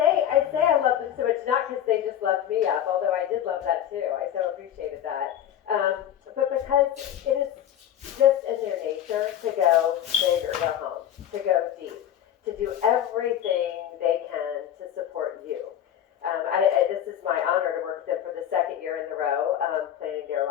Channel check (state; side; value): quieter; right; 10.6 dB